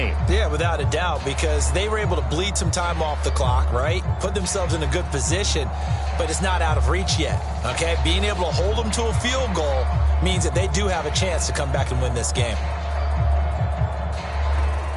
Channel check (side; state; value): both; identical; correlation 1.00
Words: Yeah, without a doubt, because they were able to bleed some time off the clock, right? Put themselves in a good position, but it's not out of reach yet, okay? Being able to hold them to a field goal means that they do have a chance to come back and win this game.